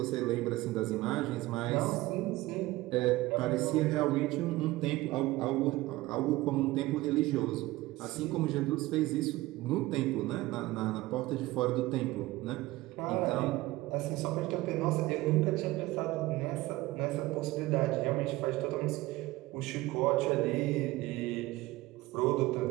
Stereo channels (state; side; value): quieter; left; 18.8 dB